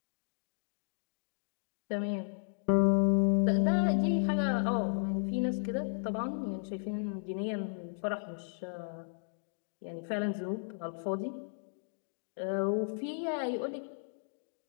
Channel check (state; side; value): silent; right; digital silence